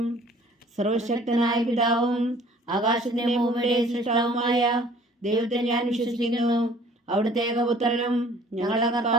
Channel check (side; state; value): both; normal; correlation 0.53